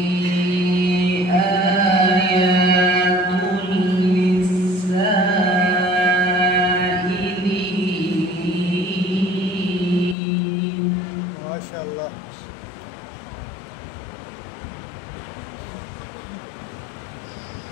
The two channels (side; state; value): right; drops out; at 10.2 s